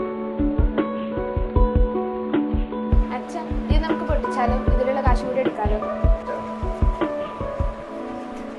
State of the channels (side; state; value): both; identical; correlation 1.00